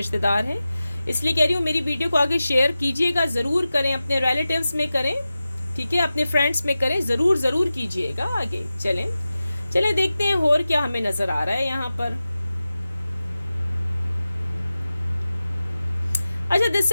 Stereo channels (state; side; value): inverted; both; correlation -0.94